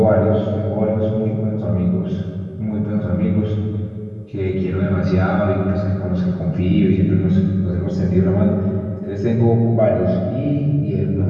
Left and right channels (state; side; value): identical; both; correlation 1.00